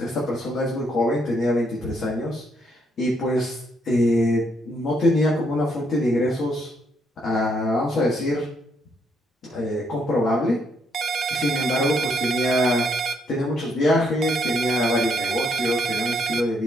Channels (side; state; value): both; normal; correlation 0.73